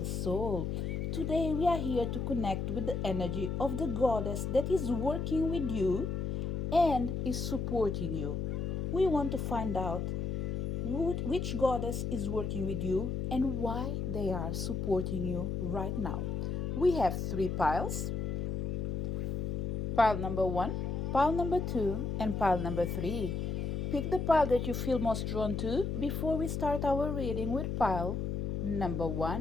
Soul. Today, we are here to connect with the energy of the goddess that is working with you and is supporting you. We want to find out which goddess is working with you and why they are supporting you right now. We have three piles: pile number one, pile number two, and pile number three. Pick the pile that you feel most drawn to before we start our reading with pile number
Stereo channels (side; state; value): left; noise; hum, 2 dB below the sound